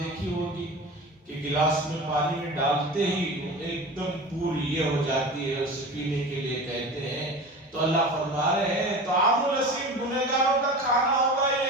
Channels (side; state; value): both; normal; correlation 0.33